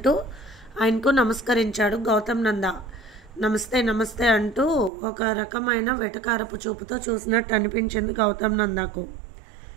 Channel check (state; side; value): drops out; left; at 4.9 s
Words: ఆయనకు నమస్కరించాడు గౌతమ్ నంద. నమస్తే నమస్తే అంటూ ఒక రకమైన వెటకారపు చూపుతో చూసినట్టు అనిపించింది గౌతమ్ నందకు.